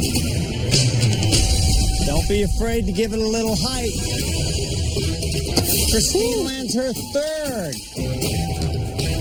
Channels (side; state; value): both; identical; correlation 1.00